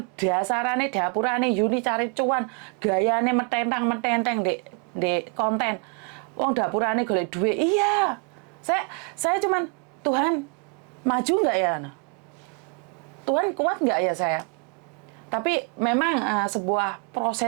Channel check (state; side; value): quieter; left; 37.0 dB